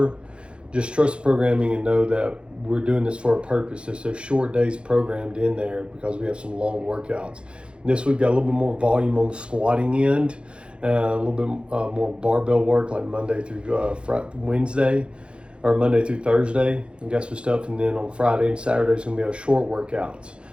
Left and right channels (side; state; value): left; late; 0.056 ms